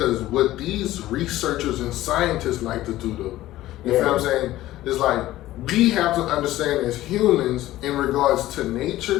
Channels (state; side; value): quieter; right; 15.4 dB